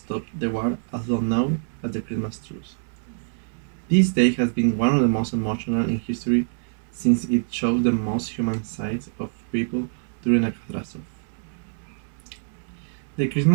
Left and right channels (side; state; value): left; silent; digital silence